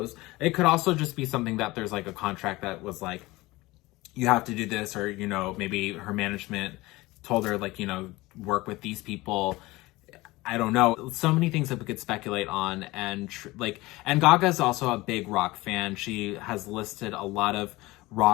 It could also just be something that there's like a contract that was like, you have to do this, or, you know, maybe her management told her, like, you know, work with these people. I don't know. So many things that we could speculate on. And and Gaga's also a big rock fan. She has listed a lot of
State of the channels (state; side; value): quieter; right; 20.4 dB